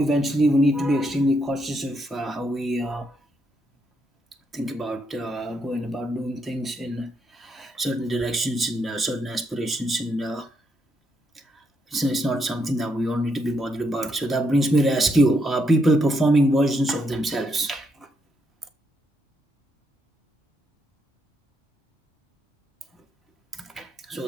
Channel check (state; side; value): normal; both; correlation 0.77